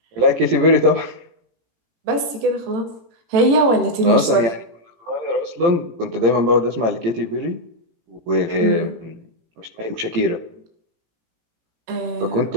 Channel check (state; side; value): late; left; 18 ms